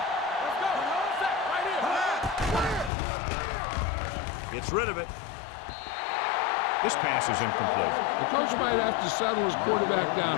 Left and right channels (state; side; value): drops out; right; at 2.9 s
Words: Let's go. Right here. Gets rid of it. This pass is incomplete. The coach might have to settle his quarterback